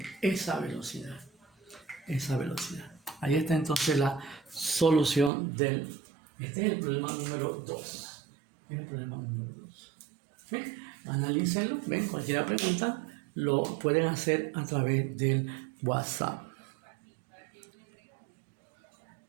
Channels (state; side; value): drops out; left; at 5.3 s